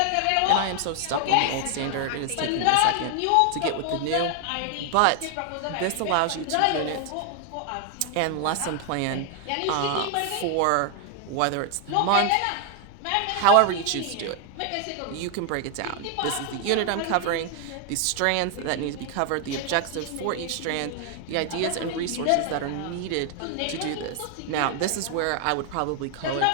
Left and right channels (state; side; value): different; both; correlation 0.00